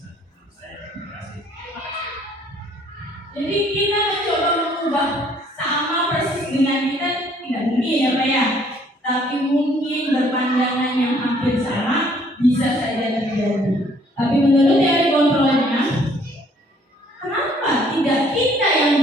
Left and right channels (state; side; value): normal; both; correlation 0.61